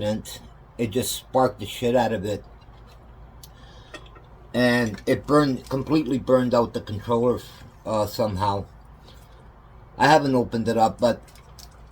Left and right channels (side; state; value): both; identical; correlation 1.00